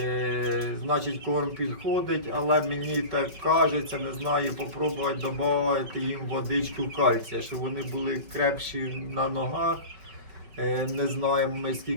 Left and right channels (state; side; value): late; left; 5.3 ms